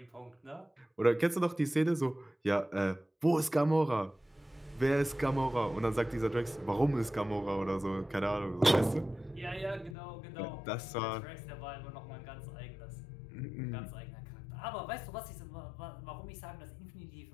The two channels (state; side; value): drops out; right; at 10.0 s